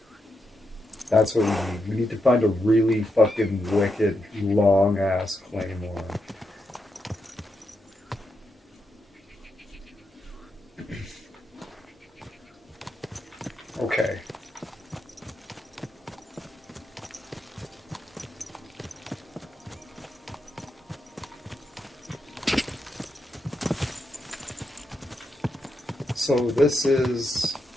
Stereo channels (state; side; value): normal; both; correlation 0.83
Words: That's what we need. We need to find a really fucking wicked, long-ass claymore. Okay. So this is...